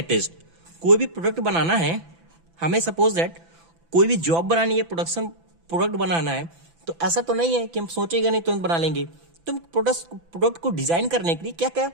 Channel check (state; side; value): late; left; 6.0 ms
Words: कोई भी प्रोडक्ट बनाना है, हमें सपोज दैट कोई भी जॉब बनानी है, प्रोडक्ट बनाना है, तो ऐसा तो नहीं है कि हम सोचेंगे नहीं तुरंत बना लेंगे। तो प्रोडक्ट को डिजाइन करने के लिए क्या क्या